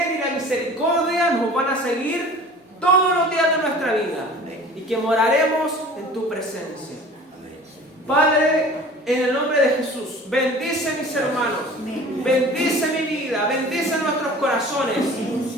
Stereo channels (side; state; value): both; normal; correlation 0.43